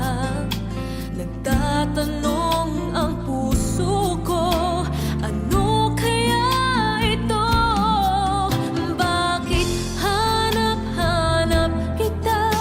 Nagtatanong ang puso ko, ano kaya ito? Bakit hanap-hanap kita?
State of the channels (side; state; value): both; identical; correlation 1.00